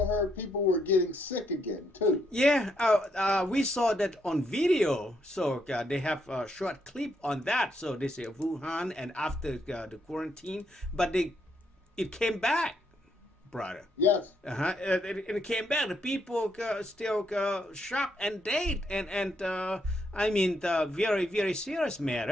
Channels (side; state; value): both; normal; correlation 0.76